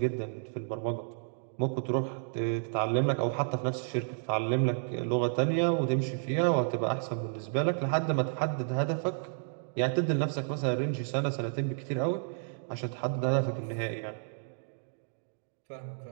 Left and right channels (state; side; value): silent; left; digital silence